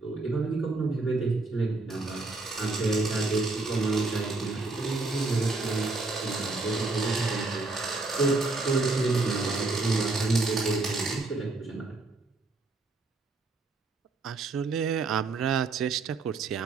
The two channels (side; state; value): left; quieter; 3.5 dB